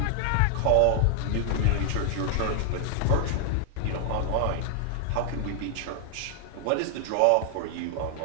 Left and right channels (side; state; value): both; different; correlation 0.00